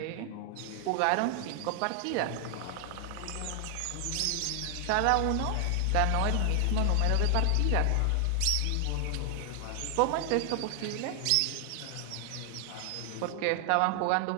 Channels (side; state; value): both; different; correlation 0.00